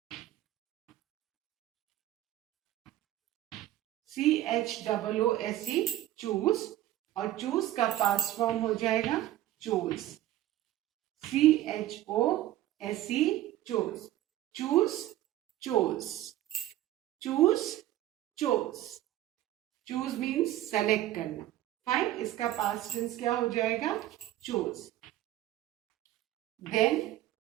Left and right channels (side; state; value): left; quieter; 14.1 dB